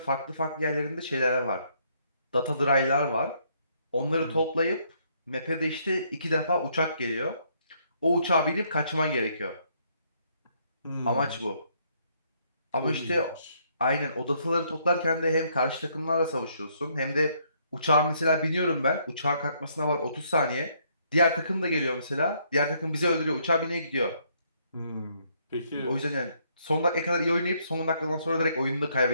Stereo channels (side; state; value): both; inverted; correlation -0.70